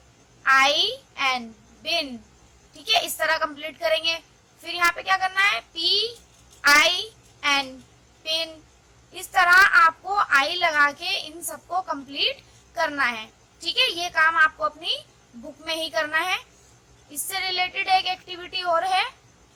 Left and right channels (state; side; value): identical; both; correlation 1.00